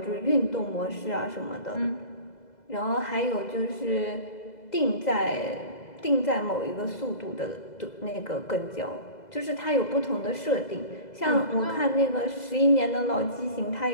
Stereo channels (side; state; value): right; late; 2.0 ms